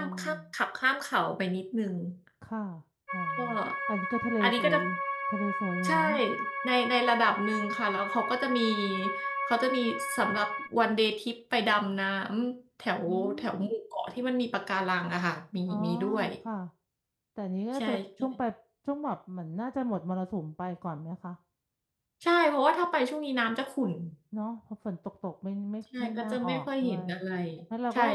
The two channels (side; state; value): both; identical; correlation 1.00